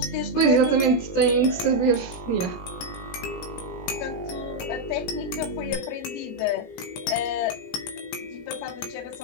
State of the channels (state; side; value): late; right; 18 ms